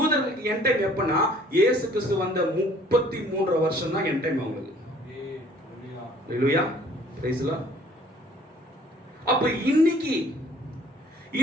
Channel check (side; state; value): both; normal; correlation 0.56